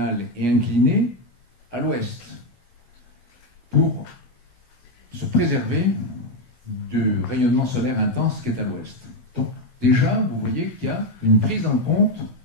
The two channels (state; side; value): late; right; 16 ms